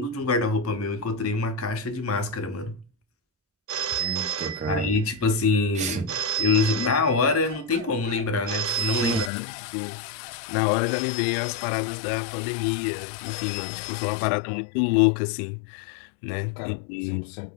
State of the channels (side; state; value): right; drops out; at 9.3 s